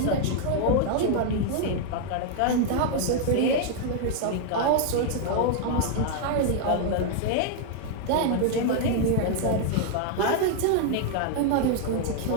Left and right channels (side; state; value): both; different; correlation 0.00